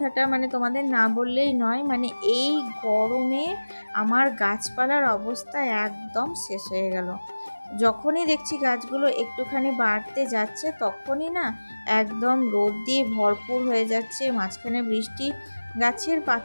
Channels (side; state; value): both; inverted; correlation -1.00